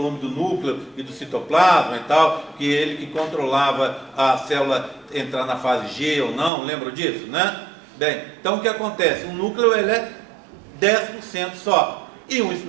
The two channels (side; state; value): left; drops out; at 6.5 s